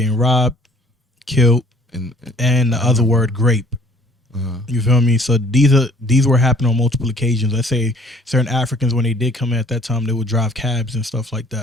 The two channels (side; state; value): both; normal; correlation 0.57